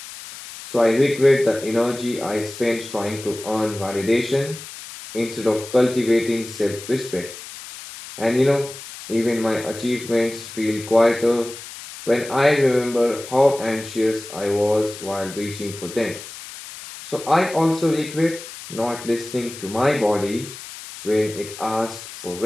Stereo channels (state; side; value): noise; left; hiss, 13 dB below the sound